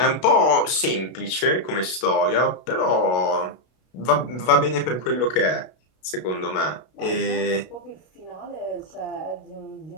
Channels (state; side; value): late; right; 32 ms